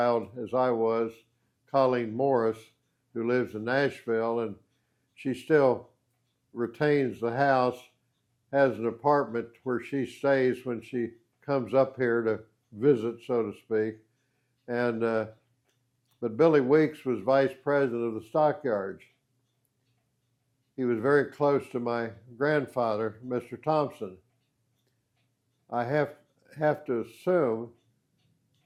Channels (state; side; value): identical; both; correlation 1.00